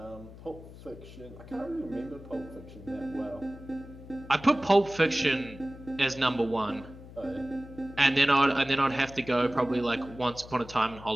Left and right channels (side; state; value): left; noise; hum, 17 dB below the sound